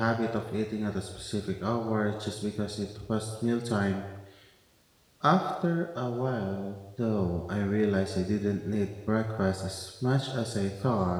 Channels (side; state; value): both; identical; correlation 1.00